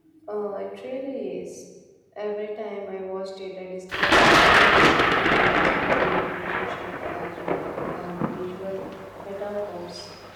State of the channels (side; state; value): both; identical; correlation 1.00